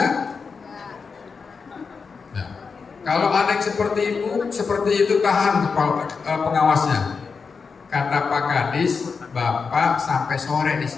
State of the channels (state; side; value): quieter; right; 5.2 dB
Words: Nah, kalau ada yang seperti itu tahan kepala pengawasnya. Kata Pak Kadis, Bapak sampai sore di